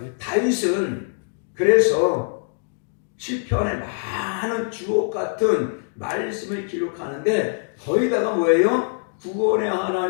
다윗은 그래서 시편에 많은 주옥 같은 말씀을 기록하는데 거기다가 뭐예요? 구원의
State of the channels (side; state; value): right; silent; digital silence